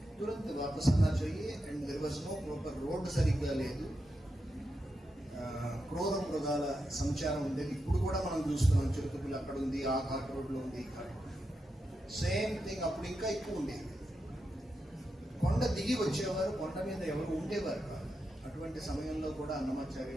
तुरंत वापस आना चाहिए. And there was no proper road సరిగ్గా లేదు. క్రూర మృగాల సంచారం ఉండేది. ఇప్పుడు కూడా మనం చూస్తున్నాం, చిరుతపుల్లి అక్కడ ఉంది, ఆ ఘాట్ రోడ్లో ఉంది, ఈ ఘాట్. సేమ్ థింగ్ అప్పుడు ఇంకా ఎక్కువ ఉండేది. కొండ దిగి వచ్చేవారు, కొండ మీద ఎవరు ఉండేవారు కాదు. అటువంటి సమయంలో కూడా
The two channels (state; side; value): normal; both; correlation 0.87